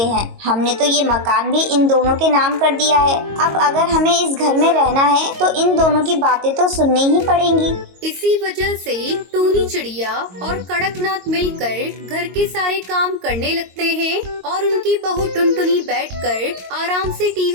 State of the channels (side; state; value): left; late; 22 ms